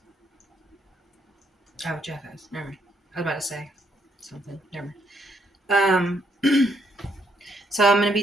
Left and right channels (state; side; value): normal; both; correlation 0.73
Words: Oh, Jeff asked. Never mind. I was about to say something. Never mind. So I'm going to